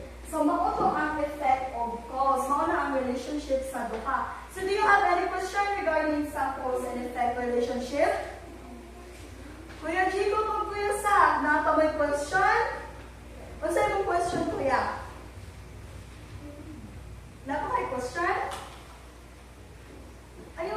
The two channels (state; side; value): identical; both; correlation 1.00